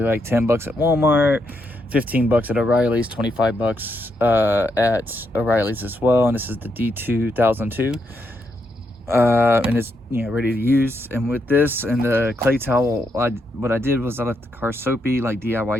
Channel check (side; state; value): both; normal; correlation 0.80